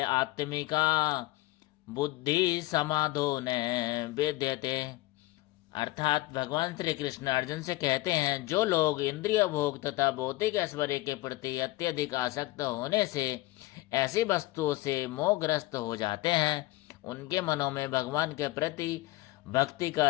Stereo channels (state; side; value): quieter; right; 18.7 dB